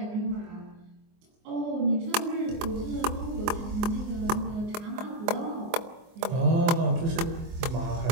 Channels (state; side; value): late; left; 24 ms